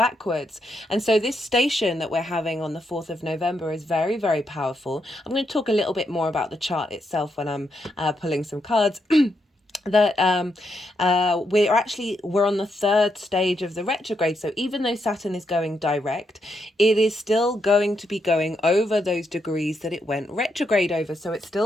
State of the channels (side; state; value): both; normal; correlation 0.80